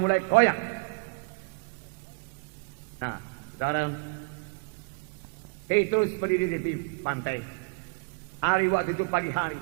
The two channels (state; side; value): quieter; left; 32.1 dB